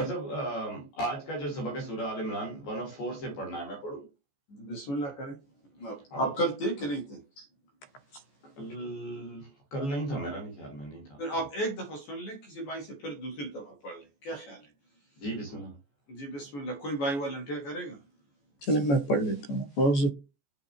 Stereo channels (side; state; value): right; late; 14 ms